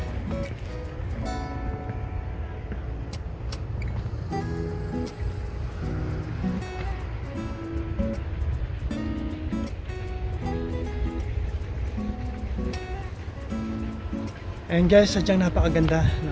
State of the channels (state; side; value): identical; both; correlation 1.00